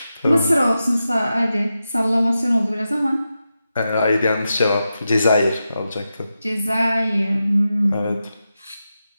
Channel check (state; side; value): inverted; both; correlation -0.90